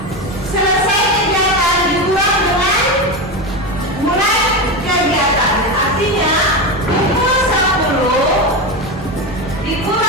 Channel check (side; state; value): both; normal; correlation 0.17